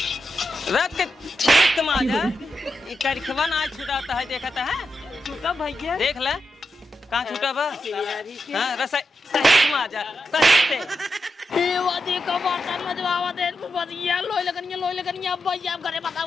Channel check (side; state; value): both; normal; correlation 0.87